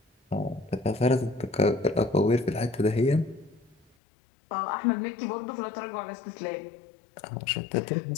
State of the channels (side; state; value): right; drops out; at 3.9 s